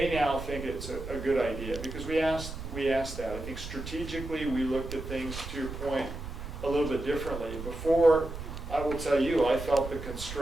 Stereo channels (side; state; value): right; noise; rumble, 9 dB below the sound